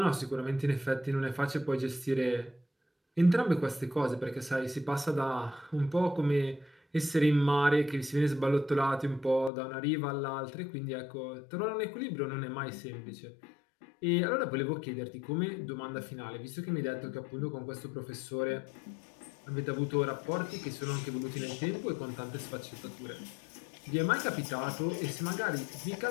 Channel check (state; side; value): drops out; right; at 9.5 s